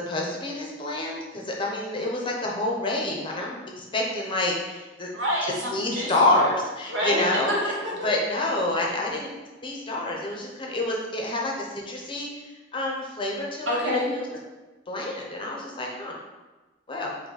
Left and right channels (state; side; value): normal; both; correlation 0.01